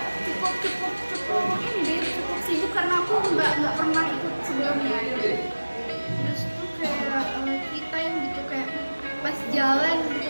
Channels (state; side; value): inverted; both; correlation -1.00